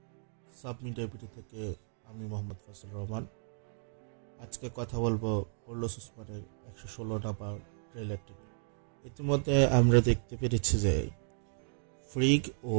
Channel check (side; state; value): left; silent; digital silence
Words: সাব মিডিয়া ভিডিও থেকে আমি মোহাম্মদ ফজল রহমান। আজকে কথা বলবো কার্লোস ওসমানের 116 নাম্বার ট্রেলারটি নিয়ে। ইতিমধ্যে আমরা দেখতে পেরেছি যে ফ্রিগ ও